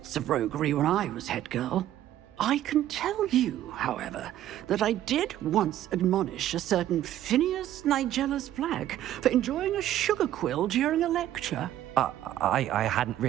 of roguery when I was head girl. I can tell you, however, that I did once admonish a certain Phineas Nigellus Black for enjoying a sugar quill during a lecture. I hadn't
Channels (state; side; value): quieter; left; 12.5 dB